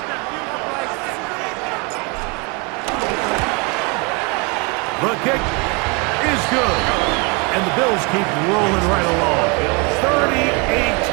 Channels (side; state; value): left; quieter; 29.9 dB